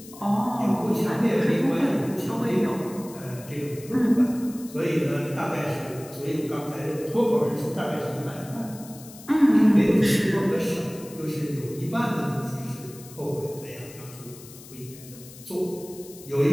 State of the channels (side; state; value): left; noise; hiss, 18 dB below the sound